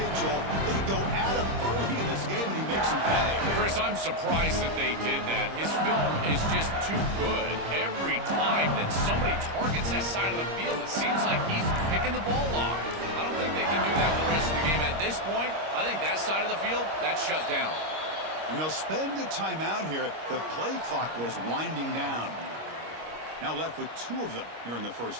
Joel. They go at him early in this game and he makes him pay. Chris, I'm surprised that they did that. His film is just too good. Every time that somebody targets that side of the field, it seems like he's picking the ball off. I don't think they can do that the rest of the game. At this point, I think that side of the field, that's shut down. And they'll spend a timeout here. The play clock was winding down. Now left with two of them here in the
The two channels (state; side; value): late; left; 26 ms